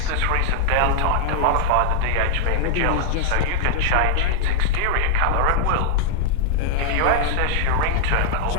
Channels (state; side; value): different; both; correlation -0.01